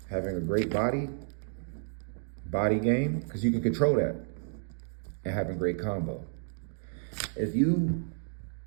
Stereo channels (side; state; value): left; silent; digital silence